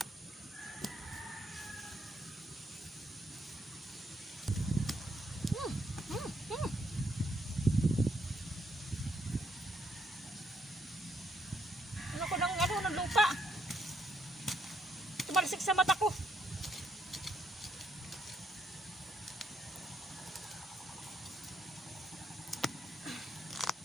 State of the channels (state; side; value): normal; both; correlation 0.73